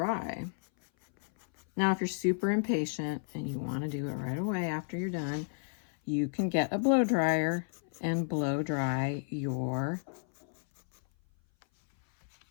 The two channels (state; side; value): silent; right; 56 dB below the other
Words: Now, if you're super impatient and you want to do it right away after you're done, you can get a blow dryer and blow dry your